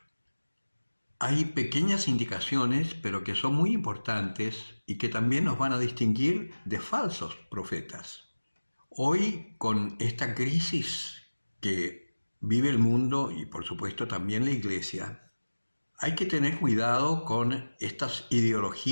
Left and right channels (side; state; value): both; inverted; correlation -1.00